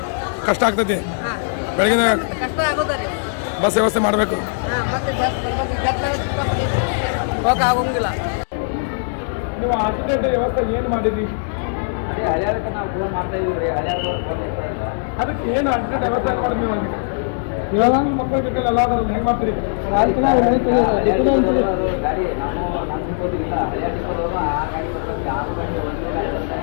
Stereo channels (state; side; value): silent; right; 66 dB below the other